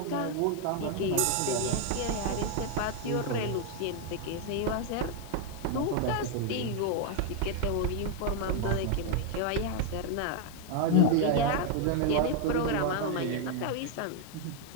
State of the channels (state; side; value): different; both; correlation 0.01